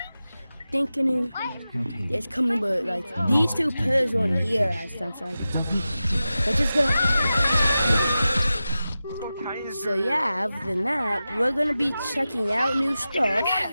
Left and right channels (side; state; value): both; inverted; correlation -0.93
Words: thinking it's coming, but these 2 pairs weren't here last time, so we're just gonna. So yeah, other than that, we're gonna be checking out new stuff.